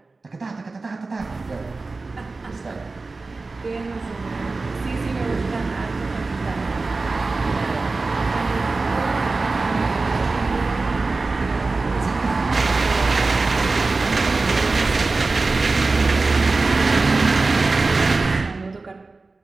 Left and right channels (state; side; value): quieter; left; 3.7 dB